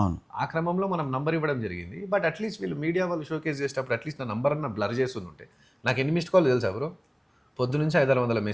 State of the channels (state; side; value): identical; both; correlation 1.00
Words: ఆ క్రమంలో మనం నంబర్ ఇవ్వడం జరిగింది. బట్ అట్లీస్ట్ వీళ్ళు మీడియా వాళ్ళు షోకేస్ చేసేటప్పుడు అట్లీస్ట్ నా నంబర్ అన్న బ్లర్ చేసి ఉంటే. నాకు ఎన్ని మిస్డ్ కాల్ తెలుసా బ్రో? పొద్దు నుంచి